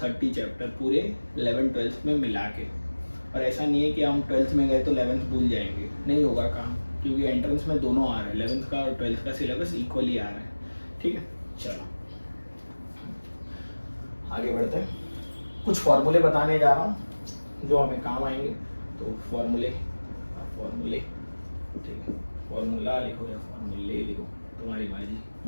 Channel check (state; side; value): inverted; both; correlation -1.00